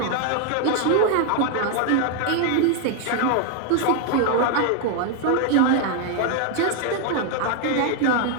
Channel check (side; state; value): both; different; correlation 0.00